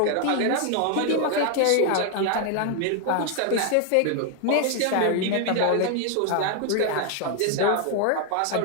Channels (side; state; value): both; different; correlation 0.00